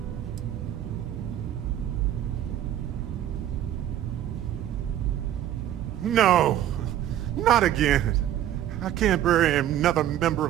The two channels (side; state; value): left; quieter; 11.8 dB